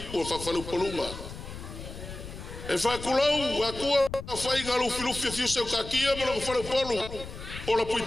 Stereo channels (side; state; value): left; noise; rumble, 11 dB below the sound